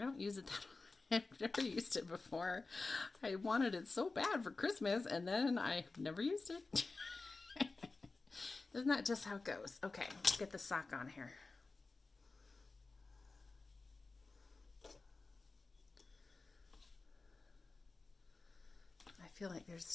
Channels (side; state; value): right; quieter; 3.7 dB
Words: use it that often. I've never used it before. I wanted it so bad for Christmas, and then I've never used it. Isn't that just how it goes? Okay, let's get the sock on here. I feel like there